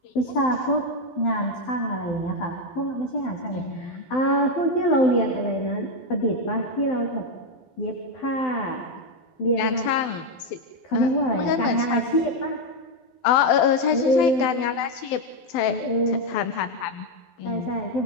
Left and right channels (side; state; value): right; late; 12 ms